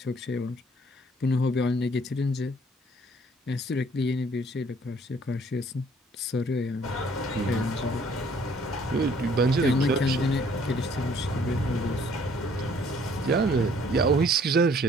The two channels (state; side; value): normal; both; correlation 0.59